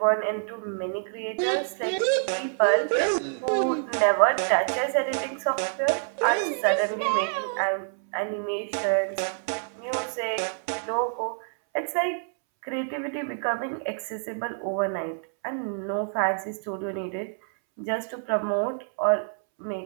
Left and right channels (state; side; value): silent; left; 60 dB below the other